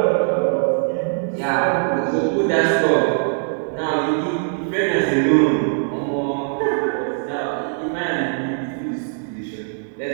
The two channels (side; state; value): left; silent; 65 dB below the other